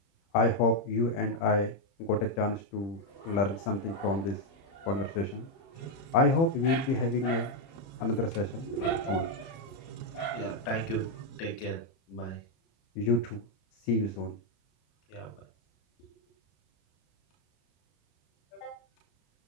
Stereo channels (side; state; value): right; late; 30 ms